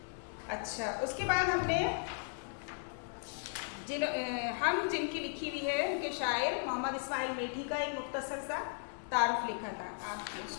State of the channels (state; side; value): silent; right; digital silence